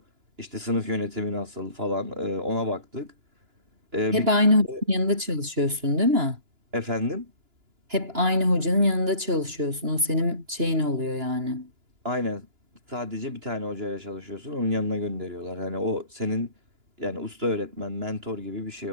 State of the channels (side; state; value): left; late; 2.9 ms